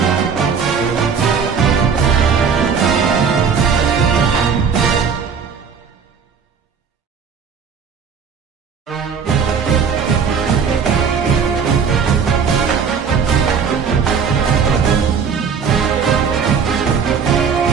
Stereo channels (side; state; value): left; quieter; 6.3 dB